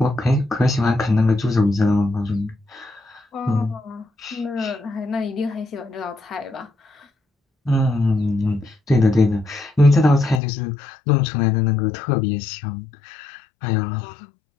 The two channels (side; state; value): right; drops out; at 10.4 s